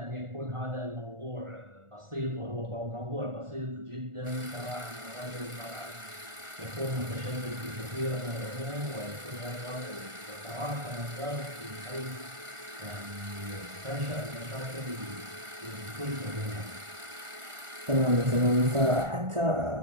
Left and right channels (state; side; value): late; left; 1.4 ms